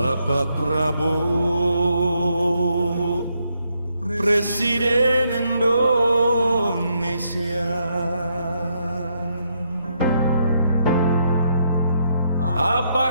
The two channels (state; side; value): inverted; both; correlation -0.76